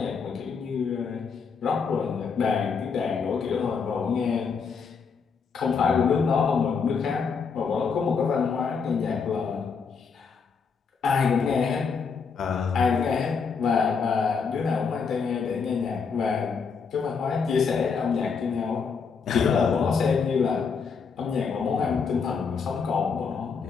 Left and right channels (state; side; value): quieter; right; 5.7 dB